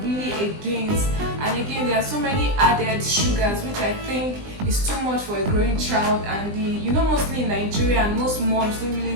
really against. And again, there are so many added sugars which I think is too much for a growing child. And mostly in Nigeria, and most moms don't really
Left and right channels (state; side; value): late; left; 20 ms